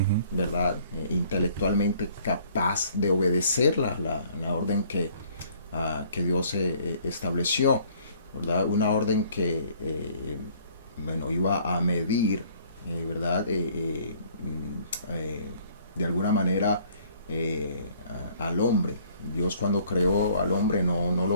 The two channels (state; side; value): inverted; both; correlation -0.58